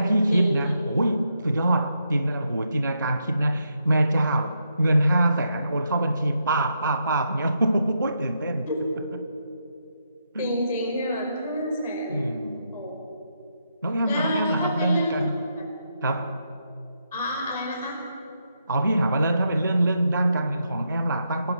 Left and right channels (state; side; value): inverted; both; correlation -0.81